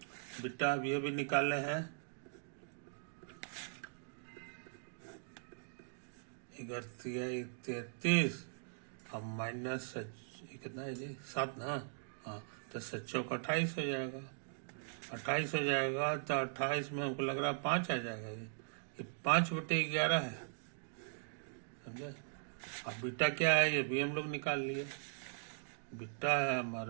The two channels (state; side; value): silent; left; digital silence